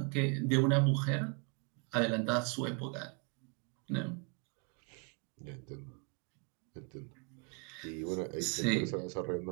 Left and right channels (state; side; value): quieter; left; 35.1 dB